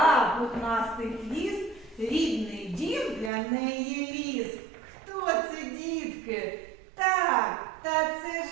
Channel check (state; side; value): drops out; left; at 3.3 s